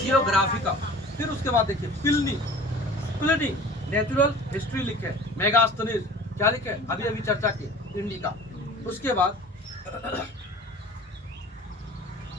फिर उसके बाद देखिए प्लिनी नेचुरल हिस्ट्री लिखे। मेगास्थनीज क्या लिखे? अभी चर्चा की इंडिका। उसके बाद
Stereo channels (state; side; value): normal; both; correlation 0.43